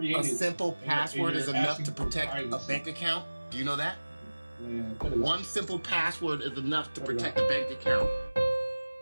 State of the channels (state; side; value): inverted; both; correlation -1.00